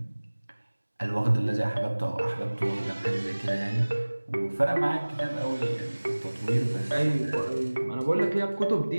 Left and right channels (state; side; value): inverted; both; correlation -1.00